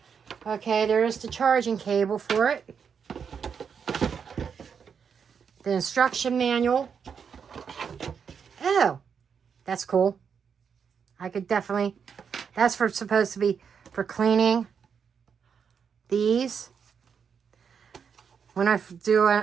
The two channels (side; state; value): left; quieter; 6.8 dB